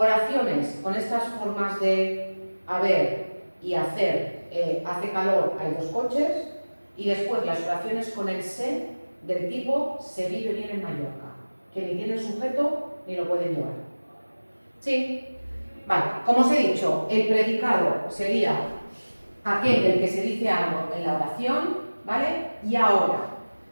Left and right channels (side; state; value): both; inverted; correlation -1.00